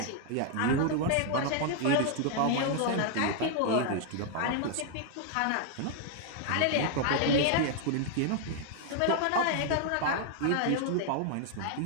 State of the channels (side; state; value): both; different; correlation 0.00